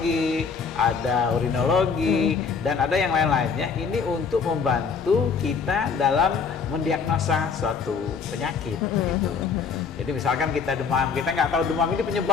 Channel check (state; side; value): quieter; right; 5.6 dB